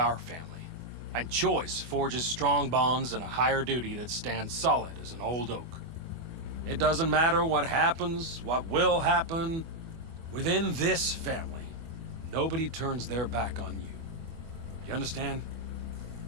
family, and choice forges strong bonds and a higher duty that stands solid as an old oak. It doesn't matter what happens, what will happen. Within this family, nobody turns their back on you. You understand?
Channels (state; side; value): late; left; 24 ms